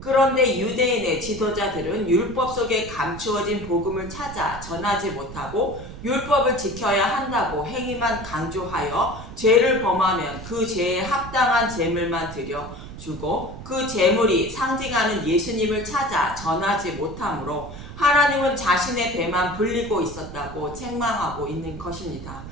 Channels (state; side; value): noise; right; rumble, 12 dB below the sound